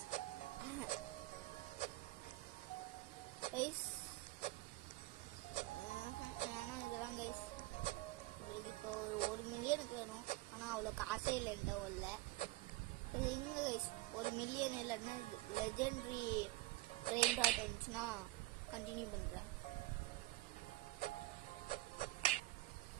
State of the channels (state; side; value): quieter; left; 20.4 dB